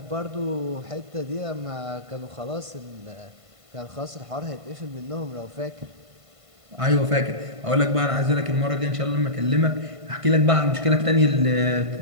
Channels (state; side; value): late; left; 1.5 ms